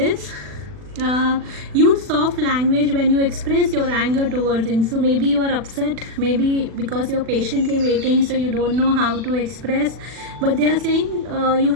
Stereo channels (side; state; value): left; late; 40 ms